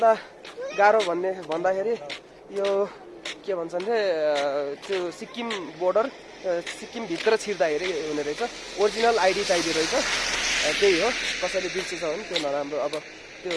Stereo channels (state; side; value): identical; both; correlation 1.00